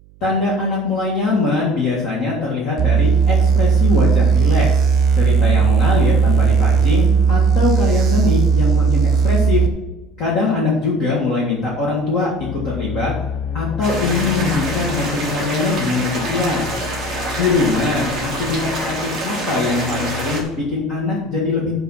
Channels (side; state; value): right; noise; hum, 28 dB below the sound